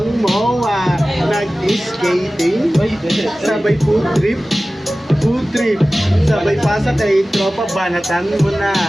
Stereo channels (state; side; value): normal; both; correlation 0.96